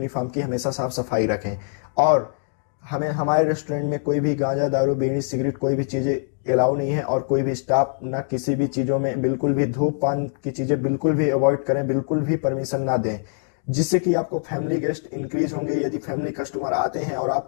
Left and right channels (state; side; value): silent; right; digital silence